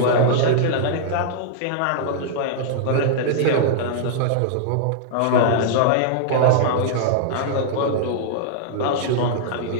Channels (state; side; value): different; both; correlation -0.01